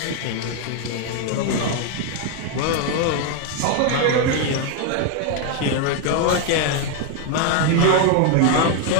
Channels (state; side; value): different; both; correlation 0.01